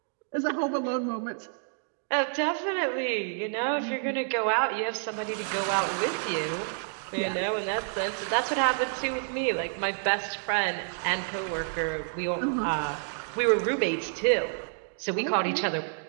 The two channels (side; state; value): left; silent; digital silence